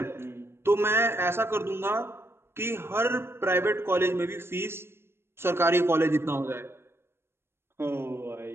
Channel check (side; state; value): left; late; 0.12 ms